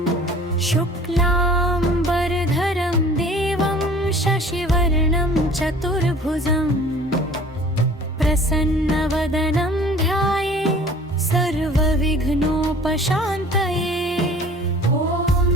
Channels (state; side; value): normal; both; correlation 0.48